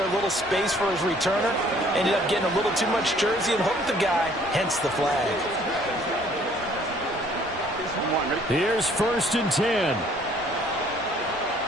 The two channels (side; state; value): both; normal; correlation 0.59